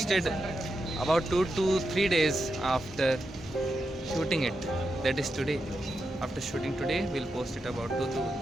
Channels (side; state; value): both; normal; correlation 0.87